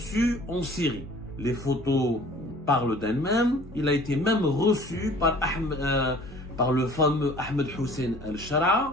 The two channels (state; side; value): normal; both; correlation 0.50